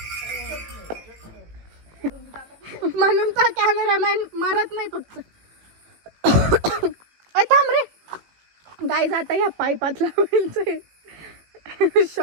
म्हणून तर कॅमेरामॅन मरत नाही फक्त. थांब रे गाईज, आता या पाईपात लावायचं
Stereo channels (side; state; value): left; late; 18 ms